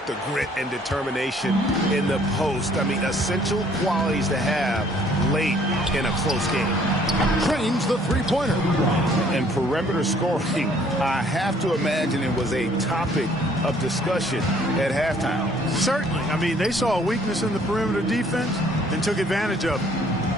the grit and determination in the post? I mean, essential qualities to have late in a close game. Trains the three-pointer. And perimeter scoring, I have to imagine it was a topic of discussion at halftime. Certainly. I mean, they saw a weakness in the perimeter defense and took advantage of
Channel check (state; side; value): normal; both; correlation 0.60